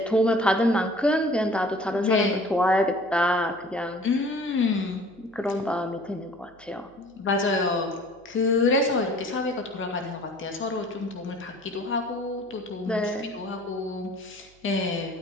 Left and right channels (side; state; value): right; noise; hum, 29 dB below the sound